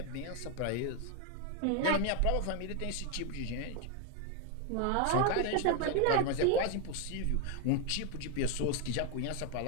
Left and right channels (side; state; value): both; different; correlation 0.01